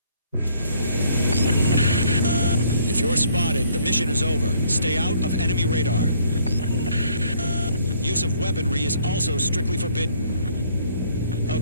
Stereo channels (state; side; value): inverted; both; correlation -0.63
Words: If you're spotted, the mission is over. Stay out of enemy radar. Use of weaponry is also strictly forbidden.